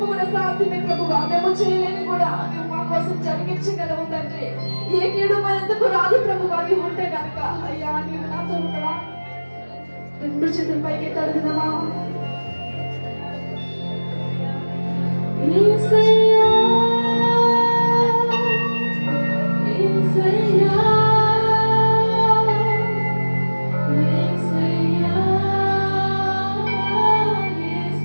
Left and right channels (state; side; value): inverted; both; correlation -1.00